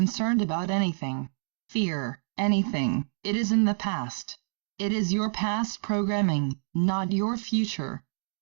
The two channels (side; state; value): left; silent; digital silence